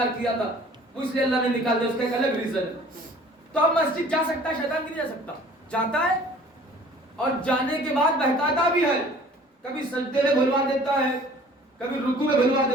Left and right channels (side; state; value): both; normal; correlation 0.50